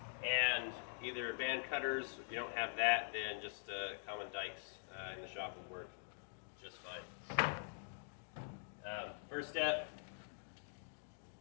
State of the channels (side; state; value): right; silent; digital silence